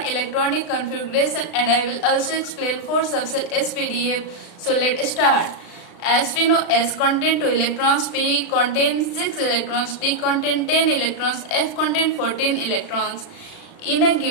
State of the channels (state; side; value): late; right; 36 ms